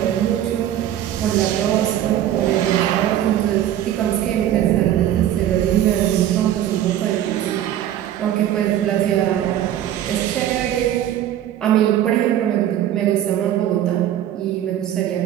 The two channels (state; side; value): quieter; left; 11.6 dB